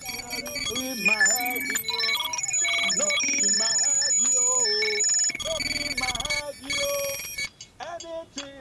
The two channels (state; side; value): identical; both; correlation 1.00